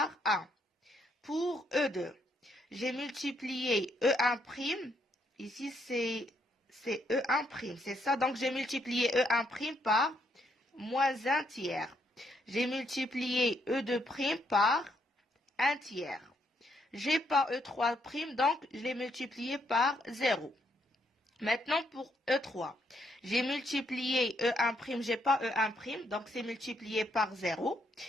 1. Pour E2, j'ai multiplié E1', ici c'est E1', c'est ça. Donc j'ai multiplié E1' par moins 1 tiers. J'ai multiplié E2' par 1 tiers. J'ai pas E3', donc je l'ai multiplié par 0. Maintenant, pour E3, j'ai multiplié E1', j'ai pas E1', donc c'est multiplié par 0.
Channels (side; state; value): both; normal; correlation 0.74